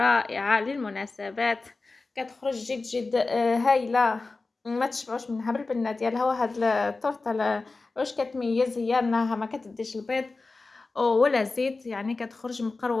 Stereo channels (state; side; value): quieter; right; 3.6 dB